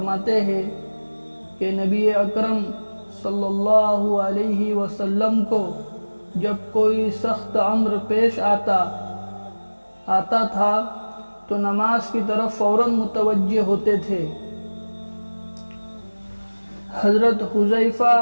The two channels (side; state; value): both; inverted; correlation -1.00